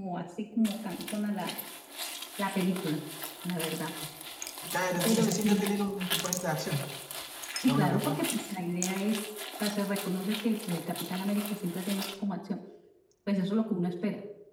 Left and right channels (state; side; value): identical; both; correlation 1.00